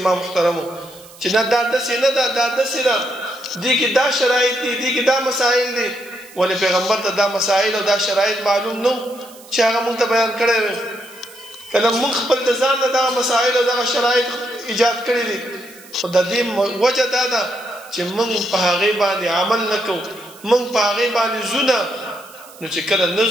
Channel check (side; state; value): right; noise; hiss, 21 dB below the sound